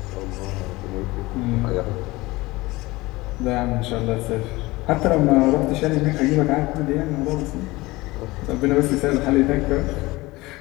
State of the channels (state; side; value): quieter; right; 20.9 dB